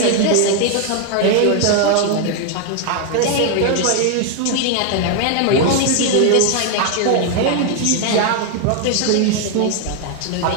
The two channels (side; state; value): both; different; correlation 0.00